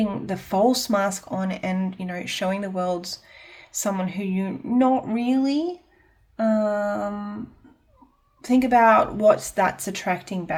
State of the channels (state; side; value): identical; both; correlation 1.00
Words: the false mask on and, showing the world someone who you're not really, think about what that's attracting